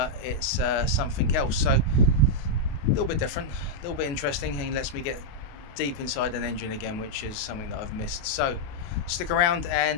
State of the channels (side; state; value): right; late; 28 ms